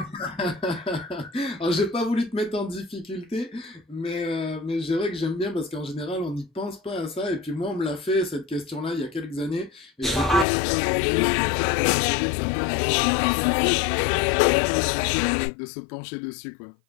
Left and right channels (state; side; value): drops out; right; at 10.5 s